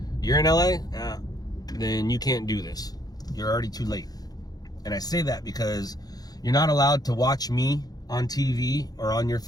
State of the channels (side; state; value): right; late; 0.19 ms